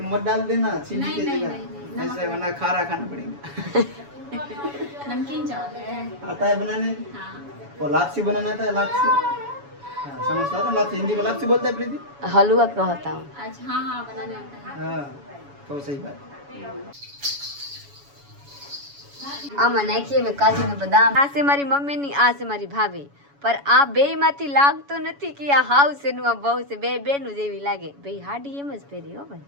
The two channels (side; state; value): left; late; 7.1 ms